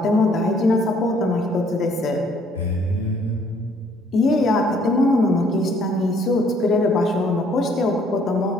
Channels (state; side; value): normal; both; correlation 0.63